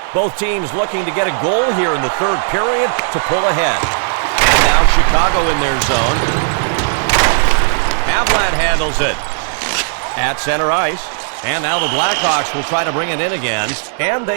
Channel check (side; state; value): left; silent; digital silence